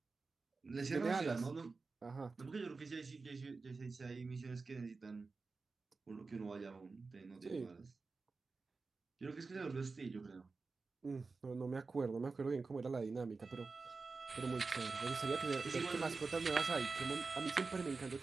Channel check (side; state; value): left; quieter; 4.1 dB